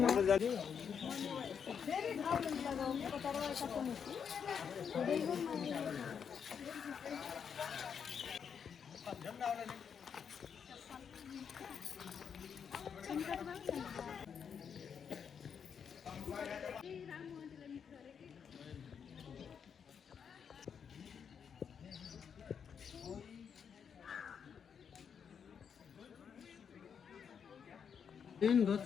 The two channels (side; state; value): right; quieter; 7.1 dB